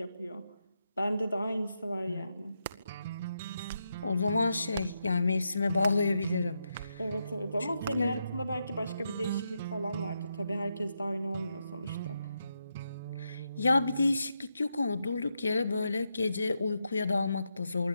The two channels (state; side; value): inverted; both; correlation -0.84